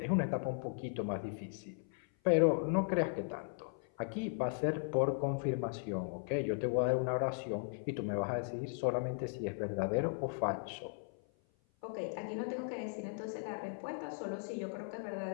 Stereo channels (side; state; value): right; silent; 53 dB below the other